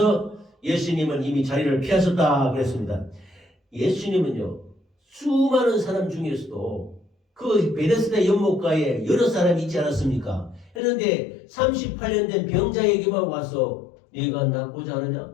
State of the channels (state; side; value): drops out; right; at 10.8 s